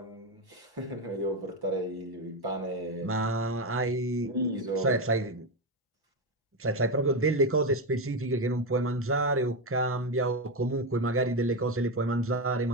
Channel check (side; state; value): both; normal; correlation 0.11